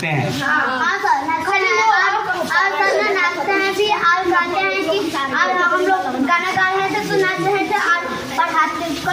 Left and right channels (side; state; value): both; identical; correlation 1.00